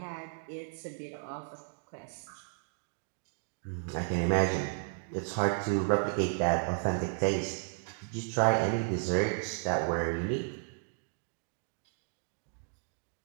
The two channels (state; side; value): silent; left; digital silence